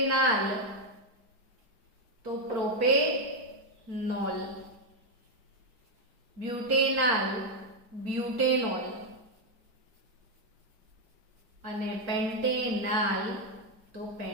તો પ્રોપેનોલ, બ્યુટેનાલ બ્યુટેનોલ અને પેન્ટેનાલ તો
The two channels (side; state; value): left; late; 4.4 ms